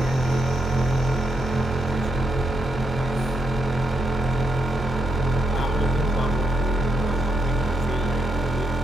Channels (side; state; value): both; normal; correlation 0.80